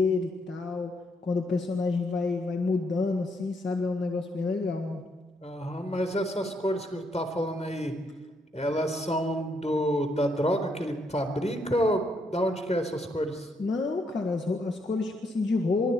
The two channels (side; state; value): both; normal; correlation 0.75